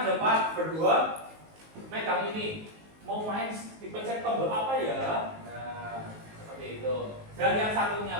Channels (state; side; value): late; left; 19 ms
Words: ada 4 berdua megang ini. Mau main dipencet tombol apa ya? Nah, seperti itu. Dan yang satunya